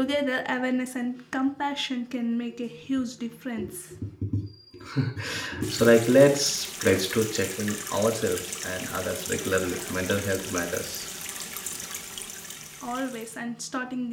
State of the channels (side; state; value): both; identical; correlation 1.00